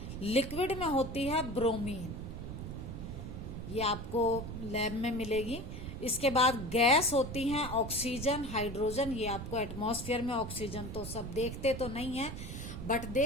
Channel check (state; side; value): noise; right; rumble, 8 dB below the sound